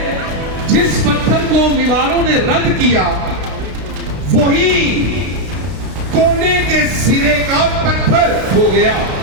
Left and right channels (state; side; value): late; left; 32 ms